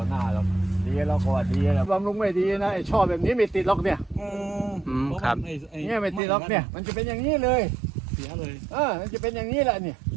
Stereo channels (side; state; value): left; drops out; at 6.2 s